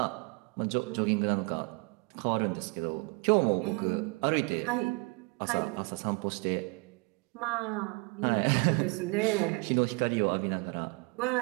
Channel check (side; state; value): left; quieter; 30.2 dB